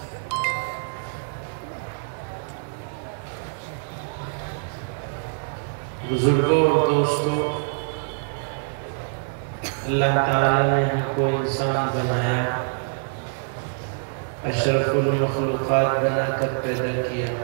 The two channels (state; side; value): silent; left; 57 dB below the other